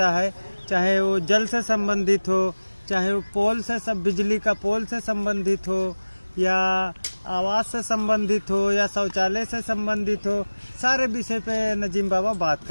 है, चाहे वो जल से संबंधित हो, चाहे वो पोल से सब बिजली का पोल से संबंधित हो, या आवास से संबंधित हो, या शौचालय से संबंधित हो, सारे विषय पे नजीम बाबा बात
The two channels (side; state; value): both; inverted; correlation -1.00